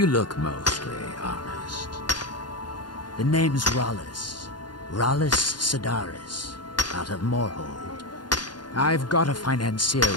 look mostly honest. The name's Rollis. Rollis Sedaris, out of Moorhold. I've got a financier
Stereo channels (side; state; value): right; late; 0.71 ms